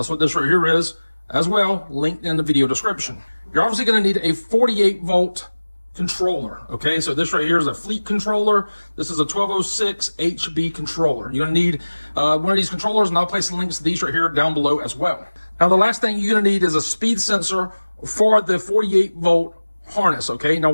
what this right here is as well, linked in the video description. You're obviously going to need a 48-volt controller. Okay, so this right here is a Fleet controller. This is a 1206 HB controller. You're going to need one of these controllers, and I'll place the links to these right here down below as well. Now, the last thing you're going to need is a speed sensor for the 48-volt harness. Okay, now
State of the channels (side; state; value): both; inverted; correlation -1.00